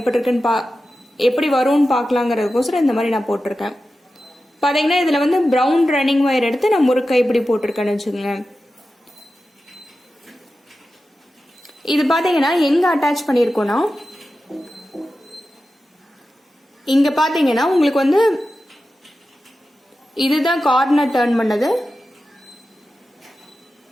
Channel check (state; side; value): normal; both; correlation 0.92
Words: இருக்குன்னு எப்படி வரும்னு பார்க்கலாங்கிறதுக்கோசரம் இந்த மாதிரி நான் போட்டிருக்கேன். பார்த்தீங்கன்னா இதில் வந்து ப்ரௌன் ரன்னிங் ஒயர் எடுத்து நான் முறுக்கு கைப்படி போட்டிருக்கேன்னு வச்சுக்கோங்களேன். இது பார்த்தீங்கன்னா எங்கே அட்டாச் பண்ணியிருக்கோன்னா, இங்கே பார்த்தீங்கன்னா உங்களுக்கு வந்து இதுதான் கார்னர் டர்ன் பண்ணது.